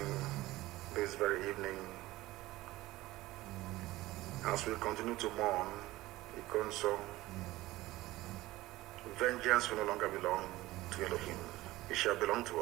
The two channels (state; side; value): quieter; left; 17.9 dB